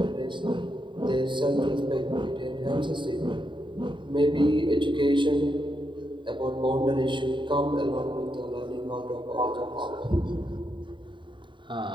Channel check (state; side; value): late; left; 0.23 ms